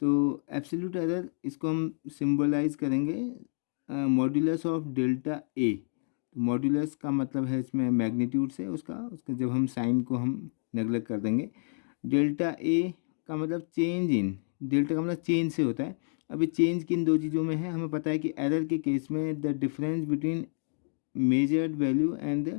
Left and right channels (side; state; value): right; silent; digital silence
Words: तो एब्सोल्यूट एरर इसको हम सिंबलाइज करेंगे मॉड्यूलस ऑफ डेल्टा ए। तो मॉड्यूलस का मतलब है इसमें मैग्नीट्यूड से उसका जब हम साइन को हम नेगलेक्ट कर देंगे। डेल्टा ए का मतलब चेंज इन, डेल्टा का मतलब चेंज से होता है। अभी चेंज किन दो चीज़ों में है, हमें पता है कि एरर के केस में the difference between measured value and